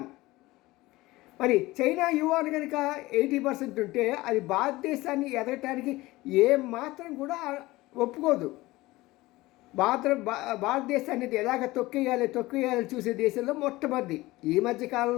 మరి చైనా యువాన్ కనుక 80% ఉంటే అది భారతదేశాన్ని ఎదగటానికి ఏం మాత్రం కూడా ఒప్పుకోదు. భారతదేశాన్ని ఎలాగ తొక్కేయాలి చూసే దేశంలో మొట్టమొదటి. ఈ మధ్య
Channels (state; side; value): quieter; right; 19.3 dB